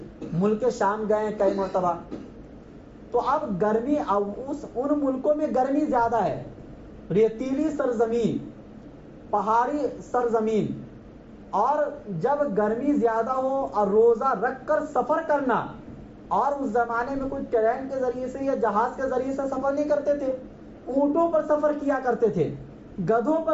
ملک شام گئے کئی مرتبہ. تو اب گرمی، ان ملکوں میں گرمی زیادہ ہے، ریتیلی سرزمین، پہاڑی سرزمین، اور جب گرمی زیادہ ہو اور روزہ رکھ کر سفر کرنا، اور اس زمانے میں کوئی ٹرین کے ذریعے سے یا جہاز کے ذریعے سے سفر نہیں کرتے تھے، اونٹوں پر سفر کیا کرتے تھے، گدھوں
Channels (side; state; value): both; identical; correlation 1.00